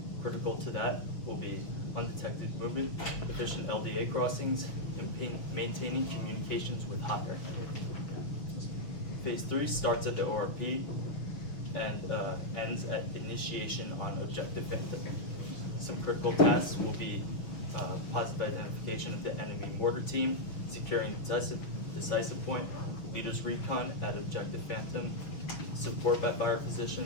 Critical to that will be undetected movement, efficient LDA crossings, and maintaining communications with higher. Phase 3 starts at the ORP and ends at initiation on Objective Phantom. Some critical tasks will be positive identification of the enemy mortar team, securing decisive point, leaders recon at Objective Phantom, support by fire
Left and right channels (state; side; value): late; right; 6.5 ms